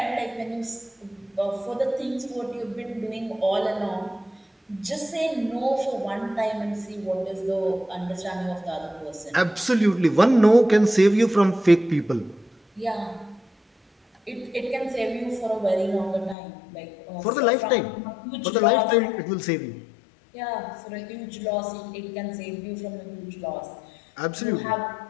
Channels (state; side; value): drops out; right; at 16.4 s